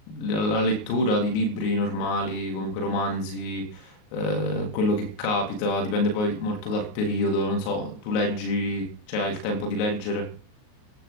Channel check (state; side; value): late; right; 38 ms